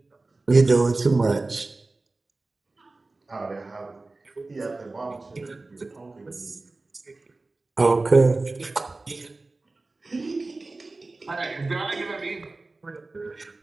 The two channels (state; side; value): quieter; left; 3.3 dB